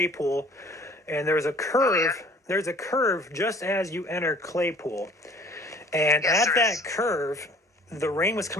and there's a curve. Oh, yeah. There's a curve just as you enter Claypool, and Yes, at there that is. curve, the rain was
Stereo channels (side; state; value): both; normal; correlation 0.51